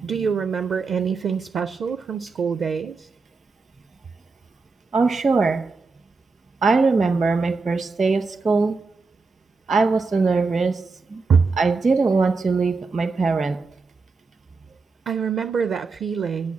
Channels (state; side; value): quieter; left; 4.3 dB